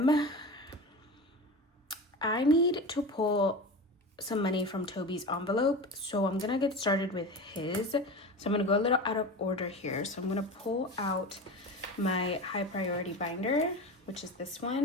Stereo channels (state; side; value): normal; both; correlation 0.29